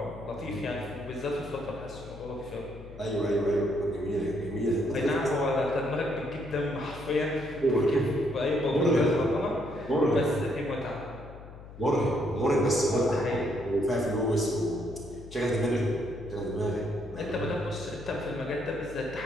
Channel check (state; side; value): noise; left; hum, 16 dB below the sound